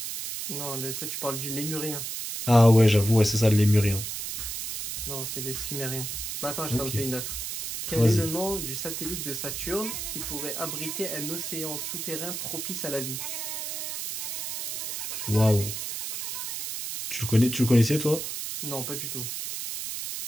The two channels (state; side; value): noise; right; hiss, 5 dB below the sound